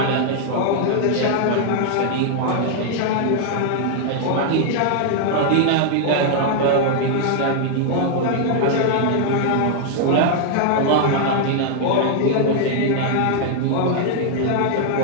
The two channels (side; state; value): both; different; correlation 0.00